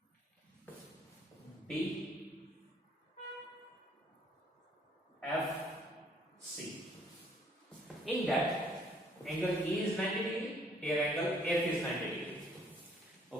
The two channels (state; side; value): normal; both; correlation 0.63